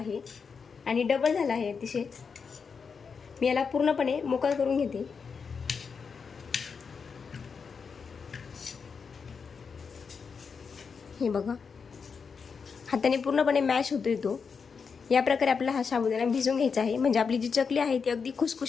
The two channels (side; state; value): right; quieter; 5.7 dB